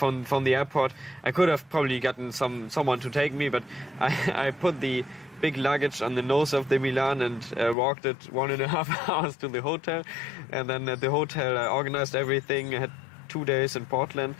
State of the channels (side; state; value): right; drops out; at 7.8 s